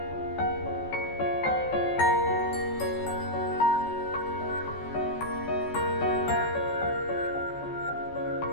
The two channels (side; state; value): right; late; 14 ms